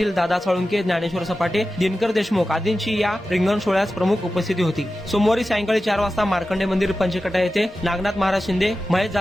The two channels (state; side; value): normal; both; correlation 0.93